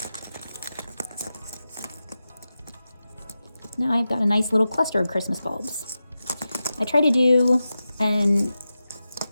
Now I've got a nice little cluster of Christmas bulbs. I try to do an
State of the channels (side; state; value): both; inverted; correlation -0.92